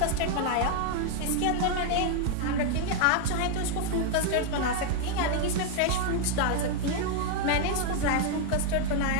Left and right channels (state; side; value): different; both; correlation 0.00